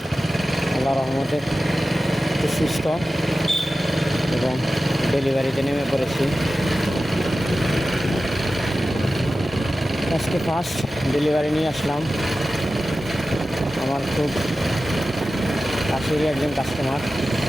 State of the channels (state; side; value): normal; both; correlation 0.94